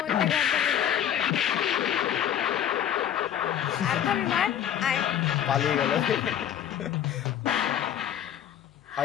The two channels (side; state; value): right; quieter; 10.1 dB